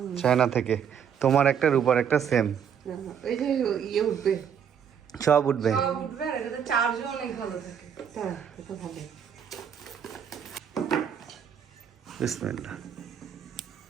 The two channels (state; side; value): quieter; left; 8.0 dB